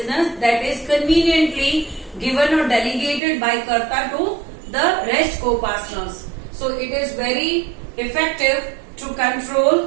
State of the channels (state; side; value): drops out; left; at 3.2 s